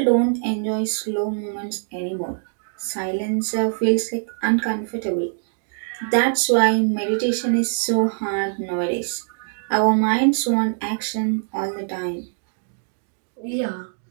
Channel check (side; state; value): left; silent; digital silence